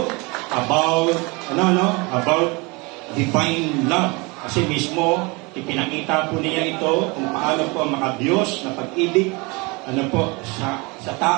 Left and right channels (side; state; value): left; quieter; 27.2 dB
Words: about divine love. Kasi mismo, ipinakita po niya ito kung paano po ang makabiyos na pag-ibig sa